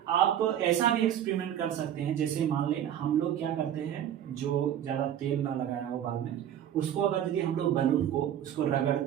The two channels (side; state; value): left; quieter; 10.4 dB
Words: आप ऐसा भी एक्सपेरिमेंट कर सकते हैं, जैसे मान ले हम लोग क्या करते हैं, जो ज़्यादा तेल ना लगाया हो बाद में, उसको अगर यदि हम लोग बलून को उसको